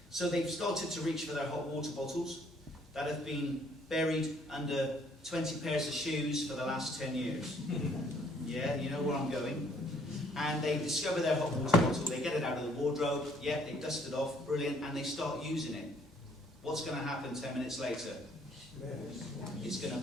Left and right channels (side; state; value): both; normal; correlation 0.63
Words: So they've started to reach for their hot water bottles that have been buried under 20 pairs of shoes for the last 10 years. Yeah, you know where I'm going. And they discover their hot water bottle, they get it out of the wardrobe, yeah, they dust it off, brilliant, and they start using it. What's going to happen 10 minutes later? It's going